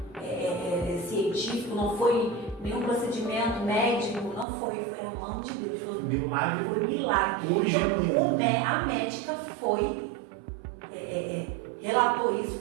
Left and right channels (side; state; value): left; drops out; at 4.5 s